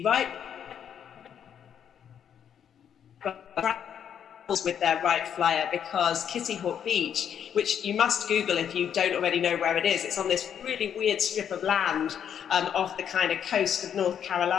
right with their right flyer, because Kitty Hawk Beach, which you must Google if you don't already know where it is, it's on this really weird strip of land off the kind of coast of North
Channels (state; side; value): quieter; right; 8.7 dB